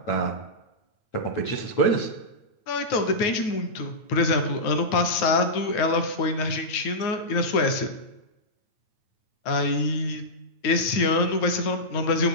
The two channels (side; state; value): right; late; 9.2 ms